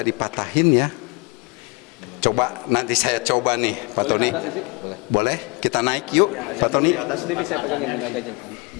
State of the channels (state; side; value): quieter; right; 28.4 dB